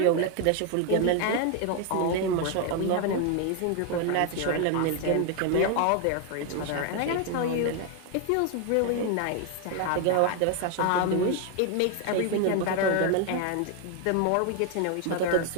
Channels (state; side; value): different; both; correlation 0.01